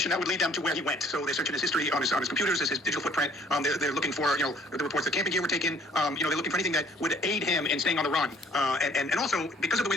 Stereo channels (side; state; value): both; normal; correlation 0.58